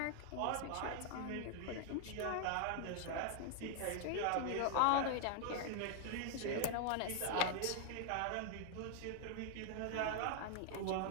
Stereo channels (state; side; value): different; both; correlation 0.00